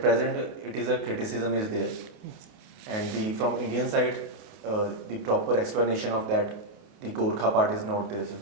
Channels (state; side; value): late; left; 28 ms